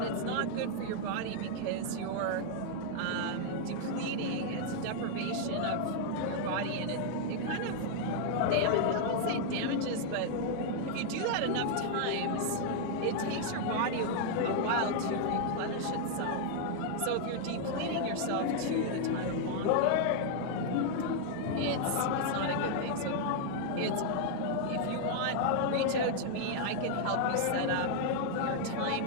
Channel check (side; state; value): both; different; correlation 0.00